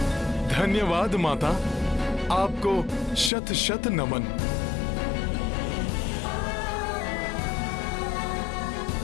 धन्यवाद माता, आपको शत शत नमन।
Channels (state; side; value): drops out; right; at 3.3 s